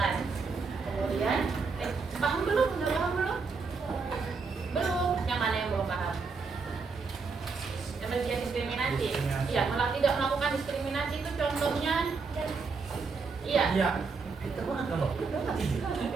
Kemudian, paham belum? Udah paham belum? Belum. Yang mana yang belum paham? Yang bagian diskriminasi. Iya, malah tidak melakukan diskriminasi itu contohnya. Iya. Iya. Kita banget kamu.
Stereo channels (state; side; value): quieter; left; 4.7 dB